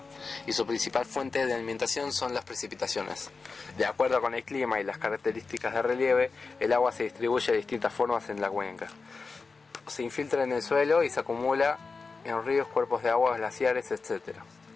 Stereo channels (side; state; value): right; quieter; 4.4 dB